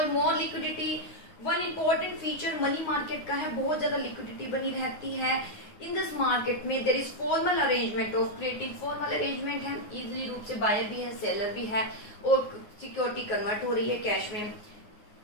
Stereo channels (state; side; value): late; right; 9.5 ms